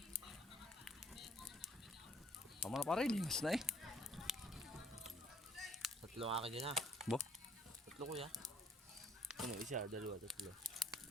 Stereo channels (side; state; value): both; normal; correlation 0.60